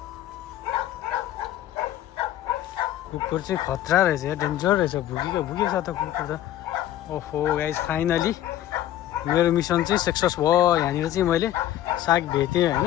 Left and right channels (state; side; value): quieter; right; 12.8 dB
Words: कुकुर चाहिँ खतरा रहेछ या डेन्जर रहेछ, भुकेको छ त कुकुर त। ओहो गाइस फाइनली मेरो मिसन चाहिँ सक्सेस भयो। यहाँनिर चाहिँ मैले साग भेटेँ